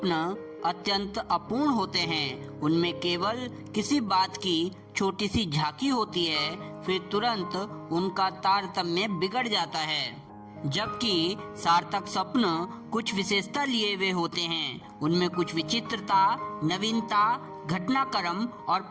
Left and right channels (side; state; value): both; identical; correlation 1.00